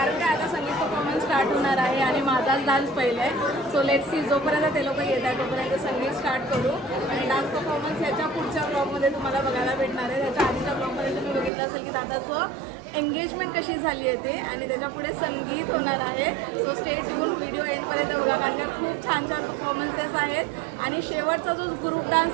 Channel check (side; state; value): left; drops out; at 11.5 s